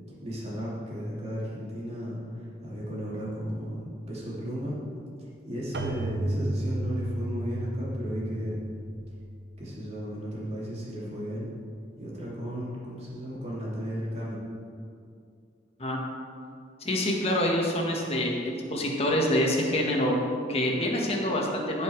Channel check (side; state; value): both; normal; correlation 0.56